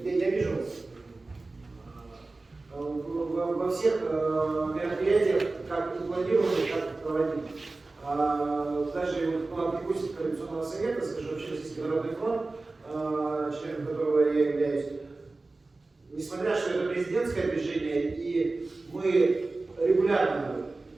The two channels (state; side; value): quieter; left; 3.4 dB